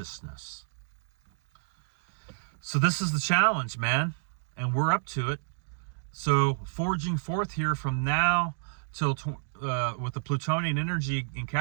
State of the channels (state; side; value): silent; left; digital silence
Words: So this is the challenge, man, and we're up to it. So forging forth here from now till with the Plutonian energy in